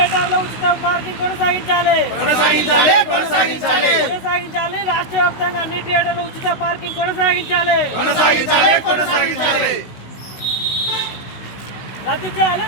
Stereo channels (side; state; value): right; late; 16 ms